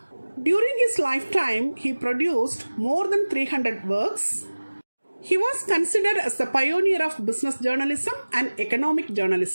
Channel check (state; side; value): inverted; both; correlation -1.00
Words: During his lifetime, he produced more than 300 works. He was considered as the pioneer of business journalism and economic